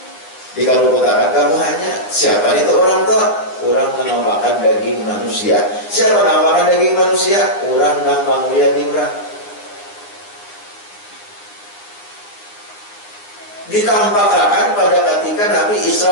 dikarukotakan kamu hanya. Siapa itu orang tuh? Orang yang makan daging manusia. Siapa yang makan daging manusia? Orang yang menguya di orang. Ditampakkan pada ketika Nabi Isra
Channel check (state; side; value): late; right; 9.9 ms